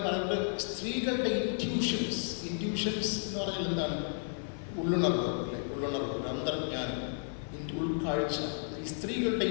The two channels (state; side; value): silent; right; 56 dB below the other